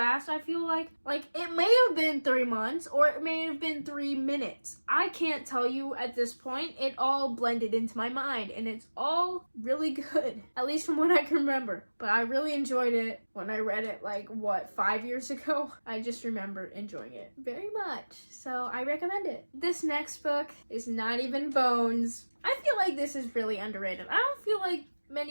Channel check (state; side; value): inverted; both; correlation -1.00